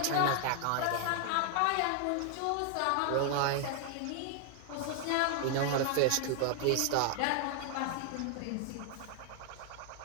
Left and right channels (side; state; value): both; different; correlation 0.00